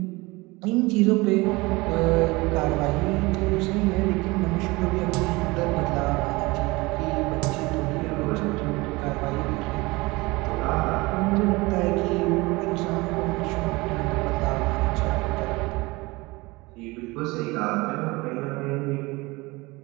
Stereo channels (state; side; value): quieter; left; 23.0 dB